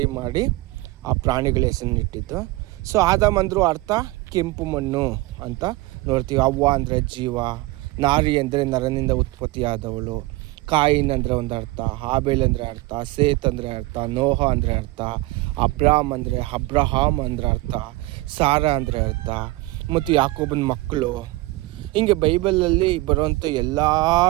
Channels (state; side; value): quieter; left; 20.3 dB